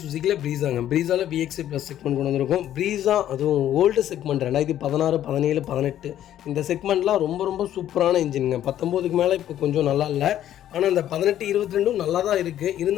சுசுக்கியில் ப்ரீஸாங்க. ப்ரீஸாவில் VXI ப்ளஸ் செக்மெண்ட் கொண்டு வந்திருக்கும். ப்ரீஸா அதுவும் ஓல்டு செக்மெண்ட் 2016, 17, 18 இந்த செக்மெண்ட்லாம் ரொம்ப ரொம்ப சூப்பரான இன்ஜினுங்க. 19க்கு மேலே இப்போ கொஞ்சம் நல்லா இல்லை. ஆனால் இந்த 18, 22 நல்லா தான் இருக்குது.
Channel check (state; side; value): quieter; right; 11.7 dB